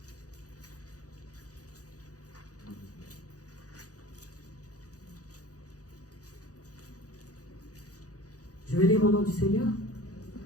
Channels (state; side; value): late; right; 0.67 ms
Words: Je vais lire au nom du Seigneur.